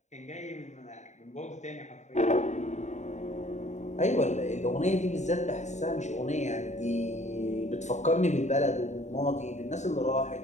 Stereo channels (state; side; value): late; right; 0.34 ms